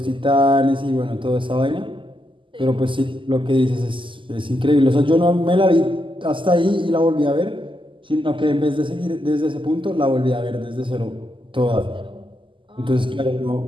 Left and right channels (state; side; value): late; left; 0.25 ms